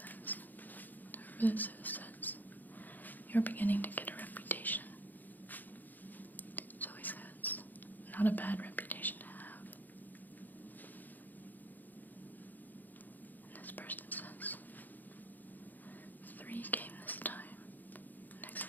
whoever this is says, "You're beginning to get a reputation." Zoe says, "Not a bad reputation to have." And this person says, "3 came this time. Next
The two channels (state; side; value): late; right; 0.085 ms